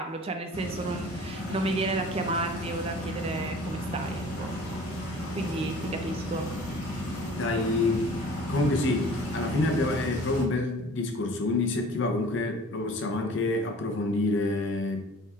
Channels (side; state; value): both; normal; correlation 0.47